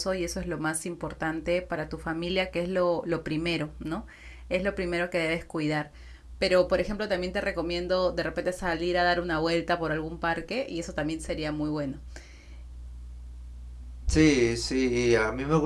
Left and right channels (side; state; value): both; identical; correlation 1.00